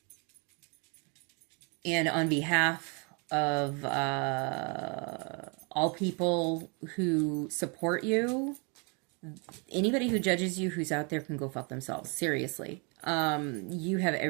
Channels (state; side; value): quieter; left; 33.6 dB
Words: And on behalf of all people who support you, anybody who judges you who's out there can go fuck themselves. Seriously. You have